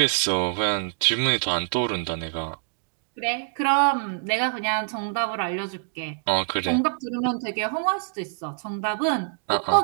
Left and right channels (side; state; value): left; silent; digital silence